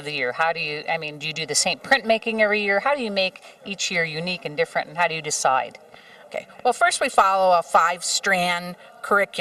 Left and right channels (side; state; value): both; identical; correlation 1.00